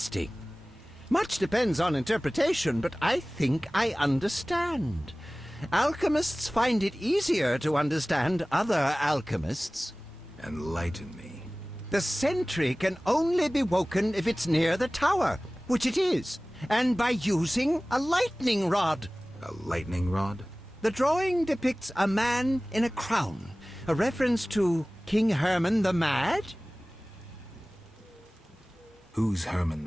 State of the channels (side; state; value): both; normal; correlation 0.98